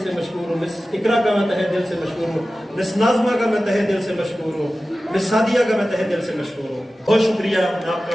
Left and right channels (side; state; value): both; normal; correlation 0.95